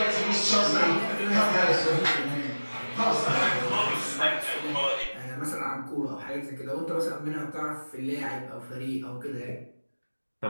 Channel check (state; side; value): inverted; both; correlation -1.00